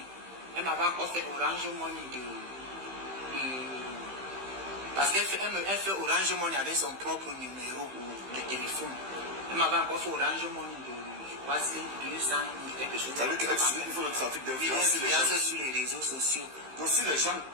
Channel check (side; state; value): left; late; 15 ms